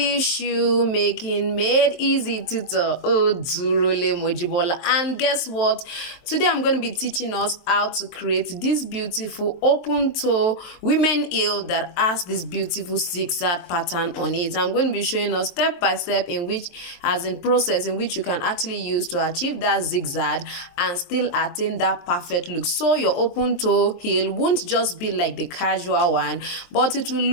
shoemaking made easy tutor, Odurole Mojibola. And guess what? Today I'm going to be teaching us how to create this beautiful open toe women heel that has this beautiful zigzag pattern on it. I'm going to be showing us step by step in which, as in process in which you can actually use to achieve that zigzag and still attain that perfect look. So your open toe heel won't just be like the casual one, but it will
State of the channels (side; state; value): right; late; 23 ms